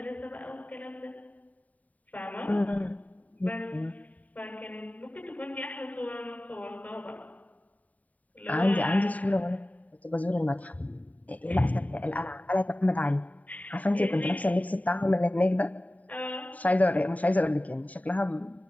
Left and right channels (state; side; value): late; right; 0.071 ms